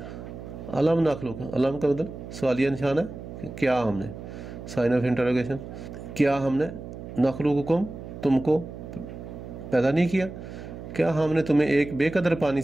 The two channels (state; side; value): noise; right; hum, 11 dB below the sound